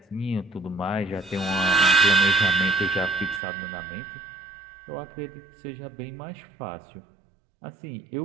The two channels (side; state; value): left; drops out; at 3.4 s